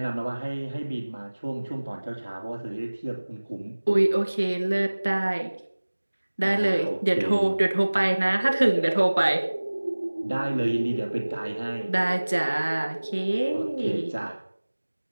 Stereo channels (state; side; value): inverted; both; correlation -1.00